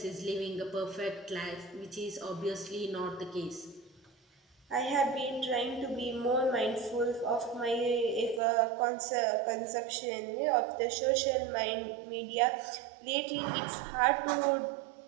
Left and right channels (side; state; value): left; drops out; at 8.4 s